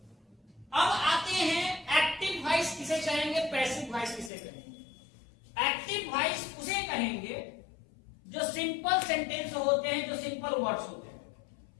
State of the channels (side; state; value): right; drops out; at 4.3 s